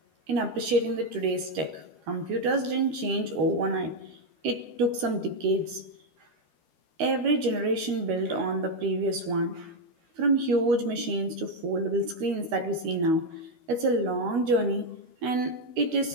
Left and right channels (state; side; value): late; left; 12 ms